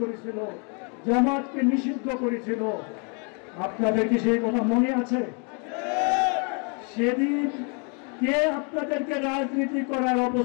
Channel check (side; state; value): right; quieter; 36.8 dB